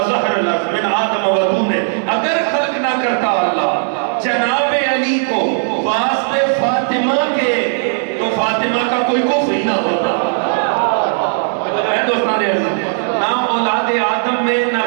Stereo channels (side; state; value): left; silent; digital silence